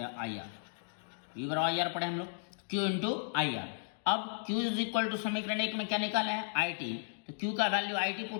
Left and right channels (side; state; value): right; silent; digital silence